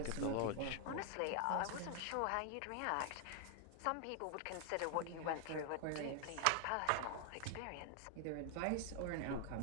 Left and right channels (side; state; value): both; different; correlation 0.00